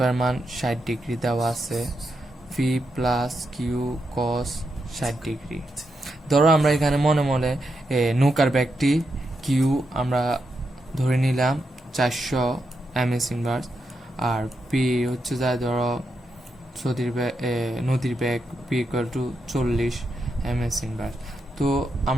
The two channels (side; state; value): both; normal; correlation 0.84